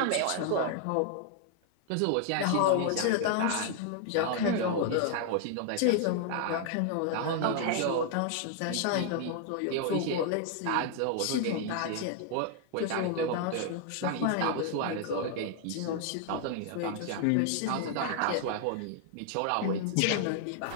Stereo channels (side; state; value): both; different; correlation 0.00